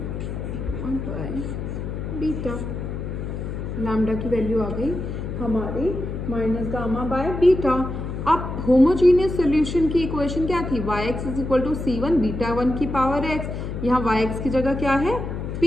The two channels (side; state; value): left; noise; hum, 5 dB below the sound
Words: 1 बाय बीटा। लैम्डा की वैल्यू आ गई हमारी माइनस गामा बाय बीटा। अब होमोजीनियस सोल्यूशन की इक्वेशन क्या थी, yx is equal to c1 beta 1 की पावर x। यहाँ yx की जगह क्या है,